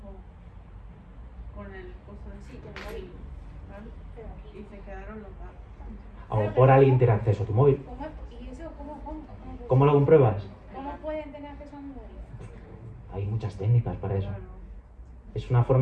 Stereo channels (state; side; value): identical; both; correlation 1.00